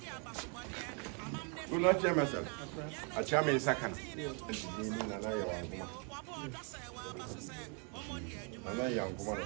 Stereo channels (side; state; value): left; quieter; 37.6 dB